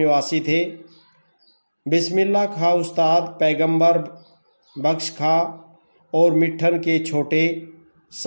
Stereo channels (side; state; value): both; inverted; correlation -1.00